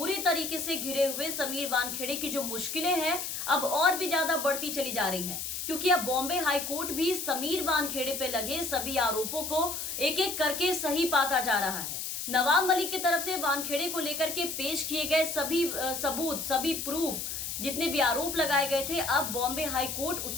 तरीके से घिरे हुए समीर वानखेड़े की जो मुश्किलें हैं अब और भी ज्यादा बढ़ती चली जा रही हैं, क्योंकि अब बॉम्बे हाई कोर्ट भी समीर वानखेड़े पे लगे सभी आरोपों को एक एक करके सही पाता जा रहा है। नवाब मलिक की तरफ से वानखेड़े को लेकर के पेश किए गए सभी सबूत, सभी प्रूफ, जितने भी आरोप लगाए गए थे, अब बॉम्बे हाई कोर्ट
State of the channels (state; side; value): noise; left; hiss, 4 dB below the sound